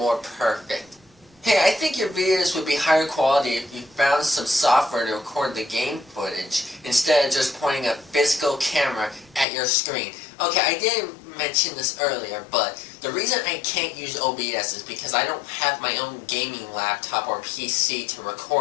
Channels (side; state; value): right; drops out; at 9.5 s